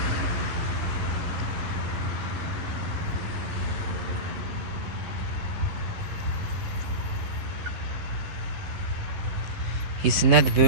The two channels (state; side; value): late; left; 11 ms